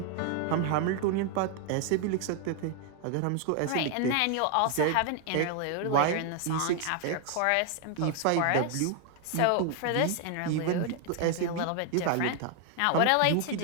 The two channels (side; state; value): both; different; correlation 0.00